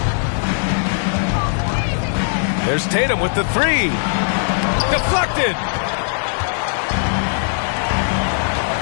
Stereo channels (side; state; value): right; silent; 55 dB below the other